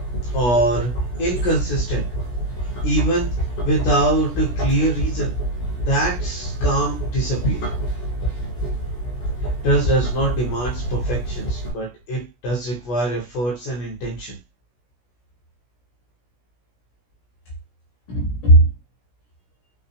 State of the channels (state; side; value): late; right; 16 ms